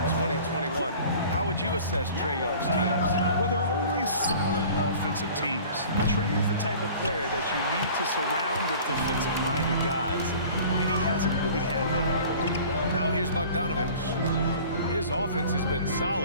2021, how would you assess Trae Young's teams? Well, they're always solid offensive teams. Trae is the type of player that you need to surround with defensive-minded guys, and he hasn't really had that. Now here's Bogdanovich. His offense has been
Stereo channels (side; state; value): both; inverted; correlation -0.45